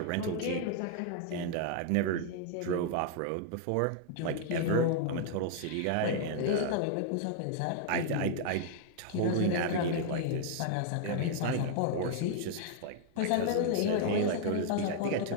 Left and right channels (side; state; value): both; different; correlation 0.00